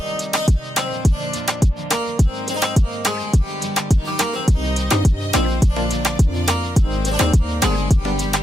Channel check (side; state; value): both; normal; correlation 0.85